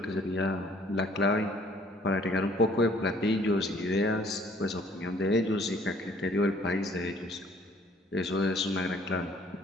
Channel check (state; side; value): normal; both; correlation 0.58